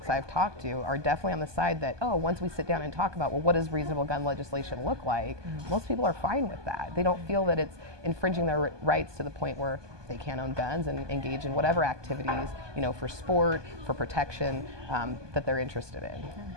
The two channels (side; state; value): left; late; 1.2 ms